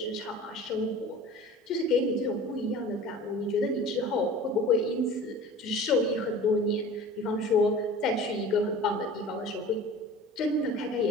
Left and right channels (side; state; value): both; normal; correlation 0.40